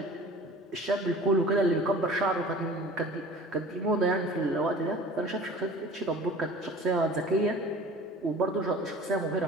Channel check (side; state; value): both; normal; correlation 0.43